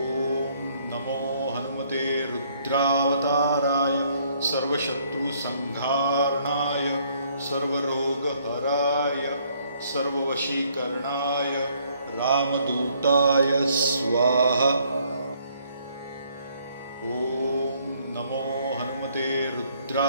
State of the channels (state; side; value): inverted; both; correlation -0.66